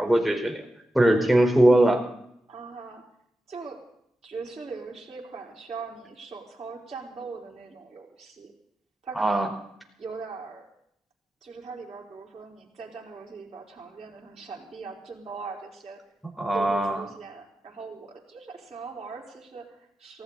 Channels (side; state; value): both; normal; correlation 0.91